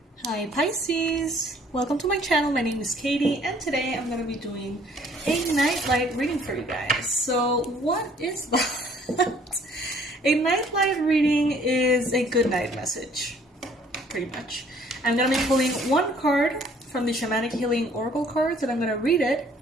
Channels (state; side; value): normal; both; correlation 0.59